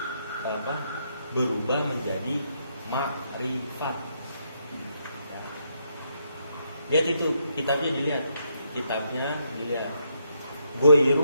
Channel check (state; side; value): inverted; both; correlation -0.77